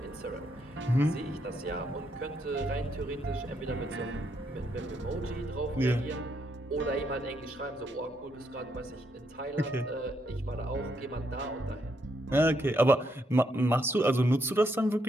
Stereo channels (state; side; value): normal; both; correlation 0.76